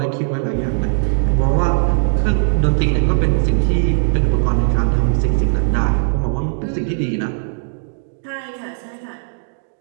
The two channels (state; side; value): silent; left; digital silence